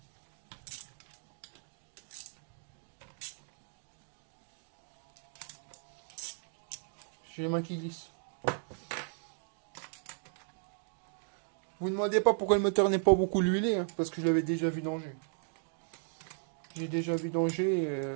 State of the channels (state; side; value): silent; left; 54 dB below the other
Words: J'ai les mains qui glissent. Vous ne demandez pas pourquoi le moteur n'est pas beaucoup huilé, hein, parce que je l'avais déjà vidangé. J'ai déjà vidangé.